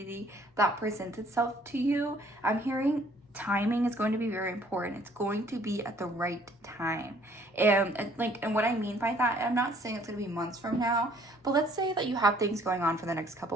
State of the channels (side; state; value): both; normal; correlation 0.60